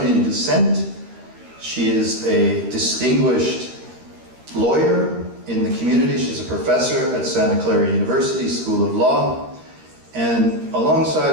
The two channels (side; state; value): left; late; 13 ms